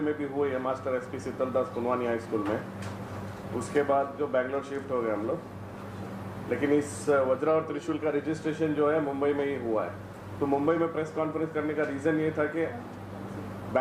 में भी हुई है, master SP Sheetaldas Punwani high school में। उसके बाद जो बैंगलोर शिफ्ट हो गए हम लोग, लेकिन इस वज्रा और त्रिशूल का रजिस्ट्रेशन जो है मुंबई में ही हुआ है। तो मुंबई में प्रेस कॉन्फ्रेंस करने का रीज़न ये था कि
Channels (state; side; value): identical; both; correlation 1.00